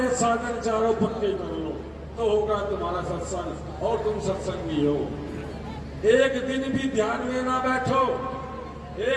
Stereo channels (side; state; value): both; identical; correlation 1.00